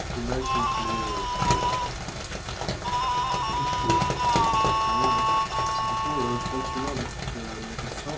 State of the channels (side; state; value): both; identical; correlation 1.00